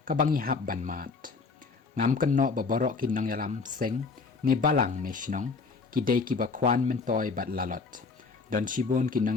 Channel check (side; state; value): right; quieter; 4.6 dB